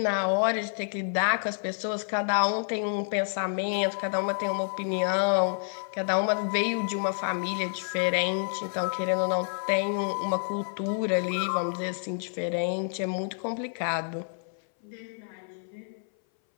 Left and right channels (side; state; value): right; silent; 59 dB below the other